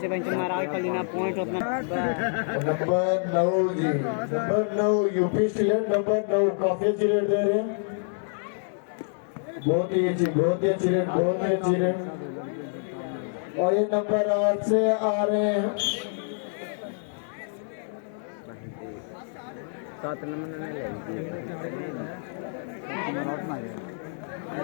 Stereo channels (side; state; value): right; silent; digital silence